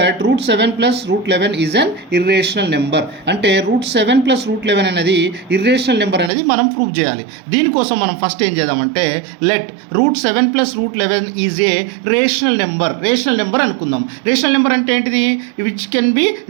root 7 plus root 11 is an irrational number. అంటే root 7 plus root 11 అనేది irrational number అనేది మనం ప్రూవ్ చేయాలి. దీనికోసం మనం ఫస్ట్ ఏం చేద్దామంటే let root 7 plus root 11 is a rational number. Rational number అనుకుందాం. రేషనల్ నెంబర్ అంటే ఏంటిది, which can be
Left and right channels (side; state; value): left; drops out; at 6.3 s